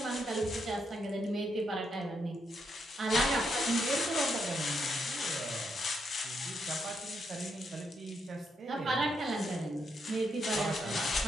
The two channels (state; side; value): normal; both; correlation 0.79